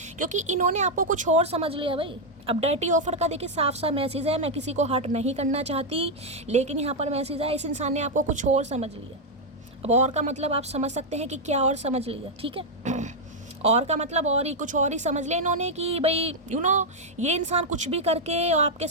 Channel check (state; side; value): normal; both; correlation -0.01